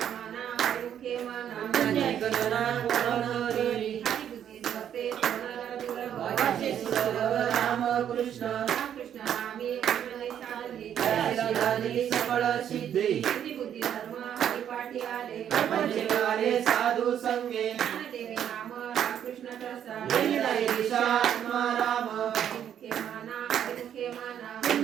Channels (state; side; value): quieter; left; 9.6 dB